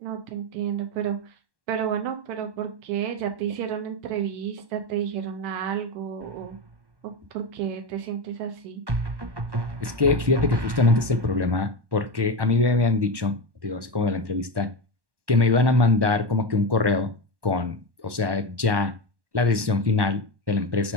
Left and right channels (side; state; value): left; late; 1.1 ms